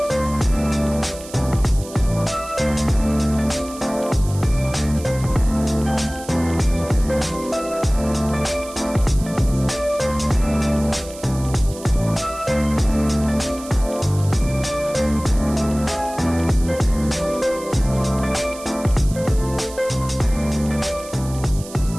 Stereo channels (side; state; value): right; noise; hiss, 16 dB below the sound